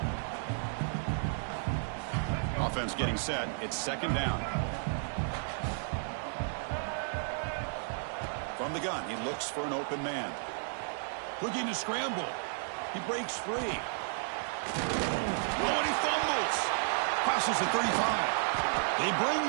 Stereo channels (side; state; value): left; silent; digital silence